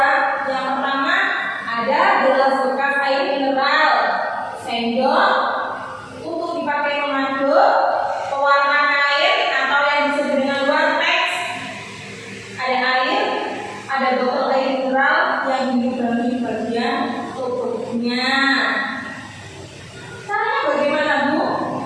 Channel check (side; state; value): both; identical; correlation 1.00